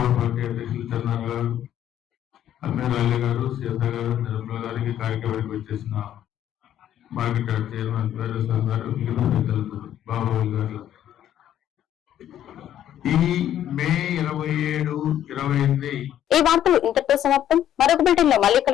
పార్టీ అధ్యక్షులు చంద్రన్న గారు, అమీర్ అలీ గారు, సీత గారు, నిర్మల గారికి కార్యక్రమానికి వచ్చేసిన మార్కెట్ యార్డ్ చైర్మన్ వీరేశ్వర గారు, మిగతా పెద్దలందరూ, బాబాబు గారు. ఈ మే 27, 28 ఈ వార్తలు ఇంతటితో సమాప్తం. మరొక బిల్డింగ్ లో మళ్ళీ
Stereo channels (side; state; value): right; quieter; 11.1 dB